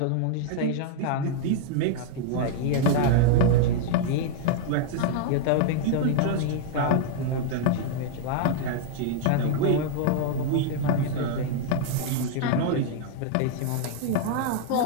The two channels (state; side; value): different; both; correlation -0.01